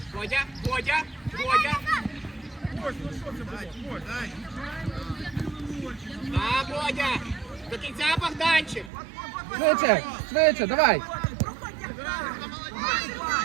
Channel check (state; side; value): drops out; left; at 8.9 s